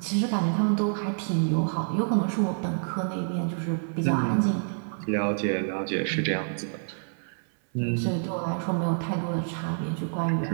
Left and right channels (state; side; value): silent; left; 57 dB below the other